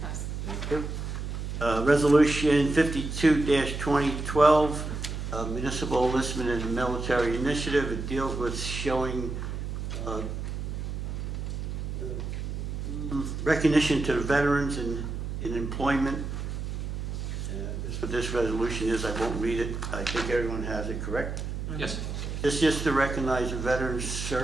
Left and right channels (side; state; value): right; noise; hum, 5 dB below the sound